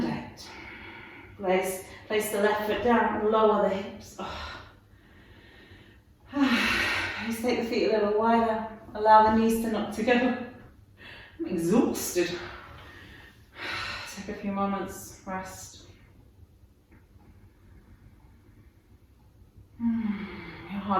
8. Place the left foot down and lower the hips. Just take the feet a little wider. Allow the knees to knock together. I'm exhausted. Take a few moments, rest. Your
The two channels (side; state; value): both; identical; correlation 1.00